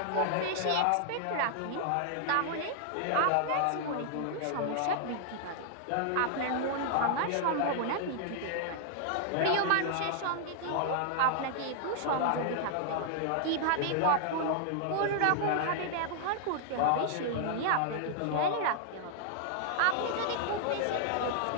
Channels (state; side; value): different; both; correlation 0.00